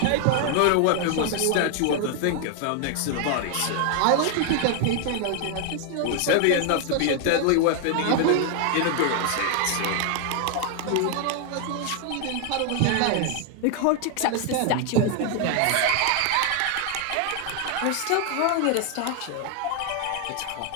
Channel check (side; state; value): both; different; correlation 0.00